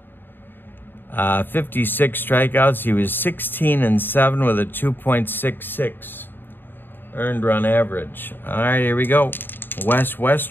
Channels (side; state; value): right; late; 0.095 ms